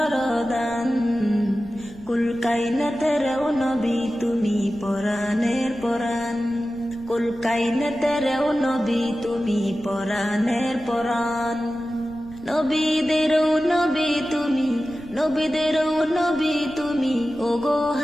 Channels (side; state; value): left; noise; rumble, 21 dB below the sound